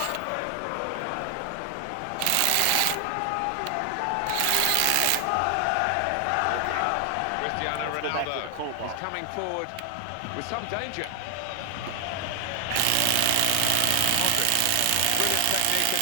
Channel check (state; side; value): different; both; correlation 0.00